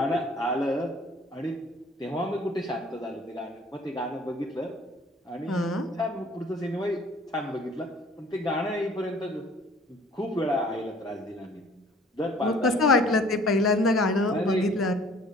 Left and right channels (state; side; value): normal; both; correlation 0.53